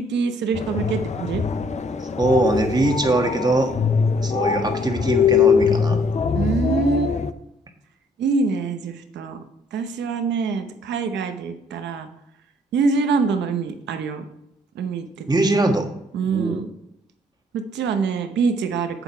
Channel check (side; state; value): both; normal; correlation 0.62